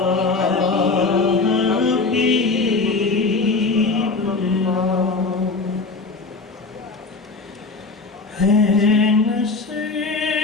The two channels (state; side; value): quieter; right; 3.9 dB